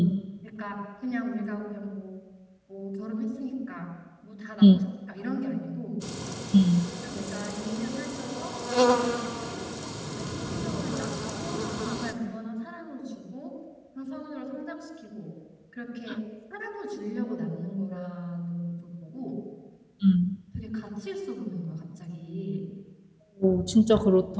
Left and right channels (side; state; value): both; identical; correlation 1.00